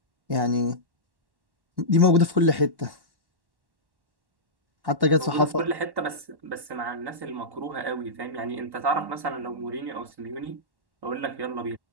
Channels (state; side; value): late; left; 1.1 ms